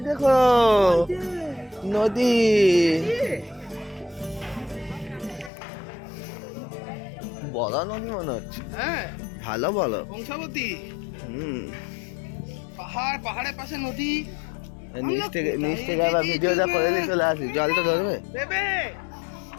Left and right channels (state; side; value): drops out; right; at 5.5 s